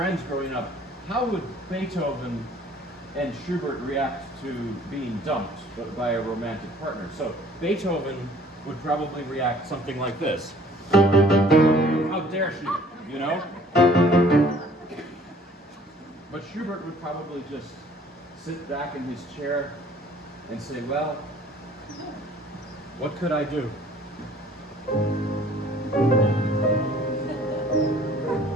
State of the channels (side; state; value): both; normal; correlation 0.55